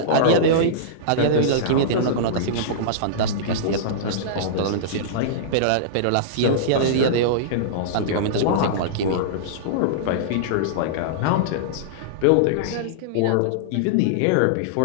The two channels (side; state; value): both; different; correlation -0.03